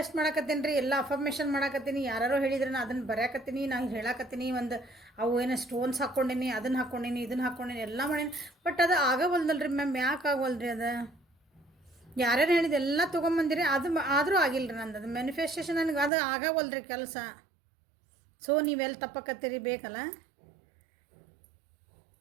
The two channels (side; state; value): left; drops out; at 16.1 s